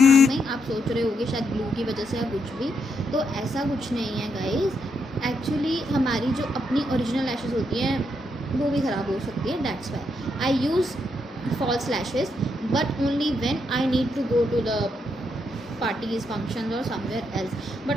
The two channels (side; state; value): both; normal; correlation 0.79